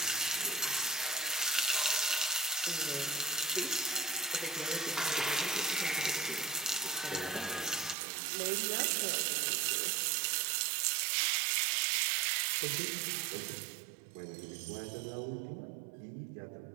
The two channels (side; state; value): left; drops out; at 8.0 s